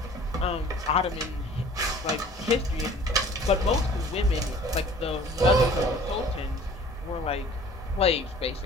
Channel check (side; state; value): both; normal; correlation 0.49